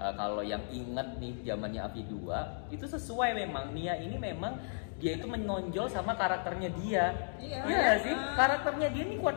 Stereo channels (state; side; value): silent; right; digital silence